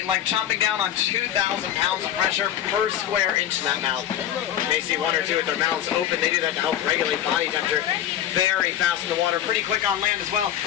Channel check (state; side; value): quieter; right; 11.0 dB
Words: in length, chomping down on 2,000 pounds of pressure per square inch in that mouth. You may see one or two with their mouths open. They do that to help regulate body temperature. Very fast in the water, pretty quick on land as well.